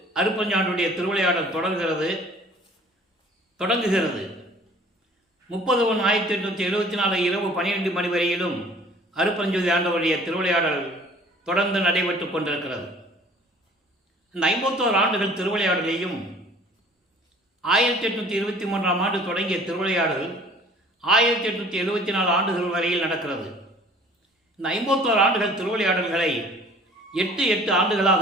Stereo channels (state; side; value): normal; both; correlation 0.50